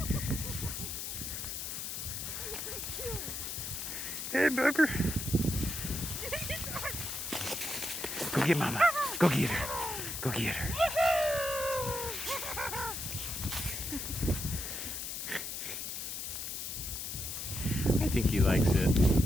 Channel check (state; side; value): noise; left; hiss, 5 dB below the sound